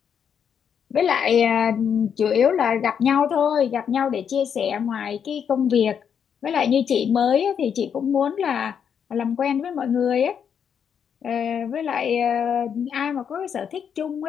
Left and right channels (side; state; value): right; quieter; 7.7 dB